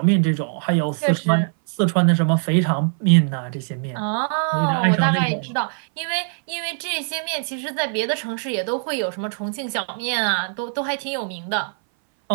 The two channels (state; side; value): silent; left; 60 dB below the other